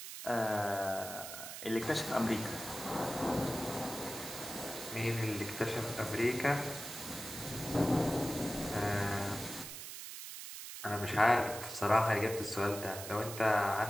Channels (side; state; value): right; noise; hiss, 9 dB below the sound